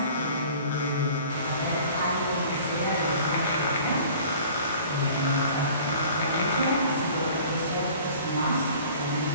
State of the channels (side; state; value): both; inverted; correlation -0.48